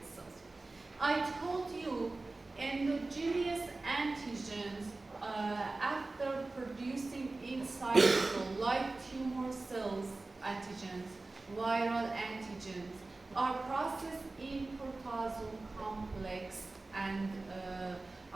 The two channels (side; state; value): left; quieter; 3.2 dB